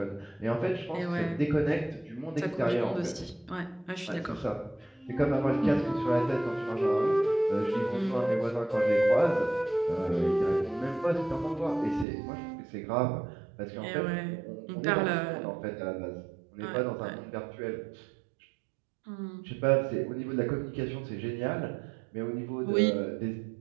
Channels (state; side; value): drops out; left; at 12.1 s